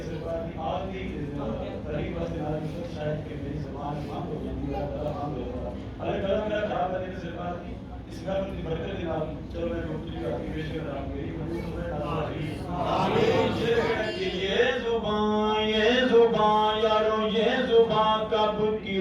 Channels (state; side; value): identical; both; correlation 1.00